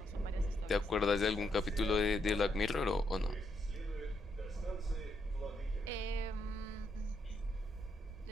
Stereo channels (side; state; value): both; normal; correlation 0.77